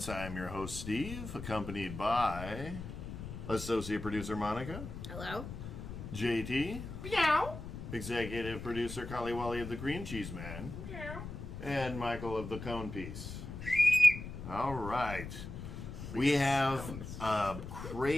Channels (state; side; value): noise; left; rumble, 9 dB below the sound